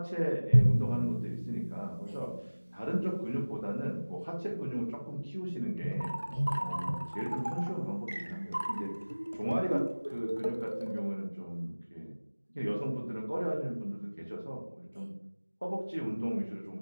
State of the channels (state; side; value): inverted; both; correlation -1.00